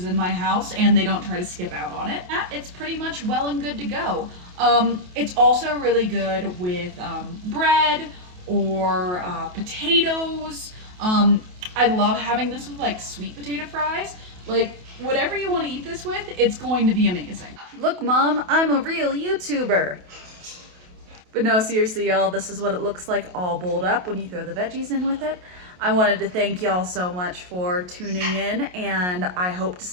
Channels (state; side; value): late; left; 28 ms